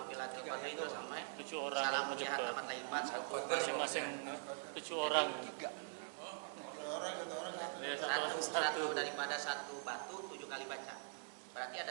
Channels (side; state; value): left; silent; digital silence